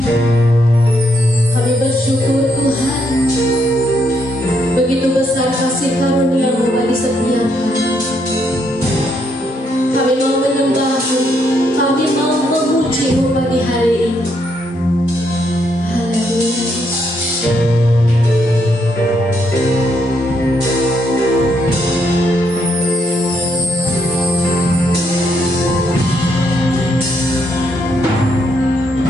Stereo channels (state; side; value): normal; both; correlation 0.75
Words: Kami bersyukur Tuhan, begitu besar kasih karunia-Mu bagi setiap kami. Kami mau menyembah-Mu, kami mau memuji-Mu pagi hari ini. Haleluya.